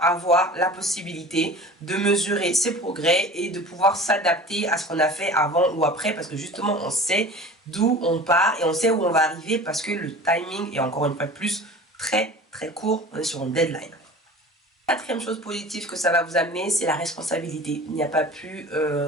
la possibilité de mesurer ses progrès et de pouvoir s'adapter à ce qu'on a fait avant ou après parce que justement on sait d'où on part et on sait où on va arriver parce que le timing est encore une fois plus très très court, on est sur une deadline. Quatrième chose positive que ça va vous amener, c'est la responsabilité. Il n'y a pas plus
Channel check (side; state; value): both; normal; correlation 0.40